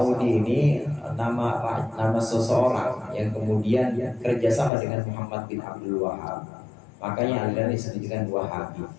nama seseorang yang kemudian kerjasama dengan Muhammad bin Abdul Wahhab. Makanya aliran disebut dengan Wahabi.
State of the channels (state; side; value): drops out; right; at 4.7 s